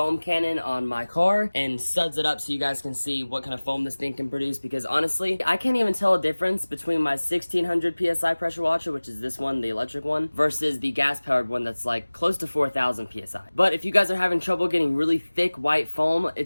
cannon on my car and suds it up so you guys can see what kind of foam this thing can produce, because honestly, I can't even tell a difference between my 1600 PSI pressure washer, which is this one, the electric one, versus the gas-powered one that's like close to 4000 PSI. But if you guys are having trouble getting really thick white foam,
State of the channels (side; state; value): both; inverted; correlation -1.00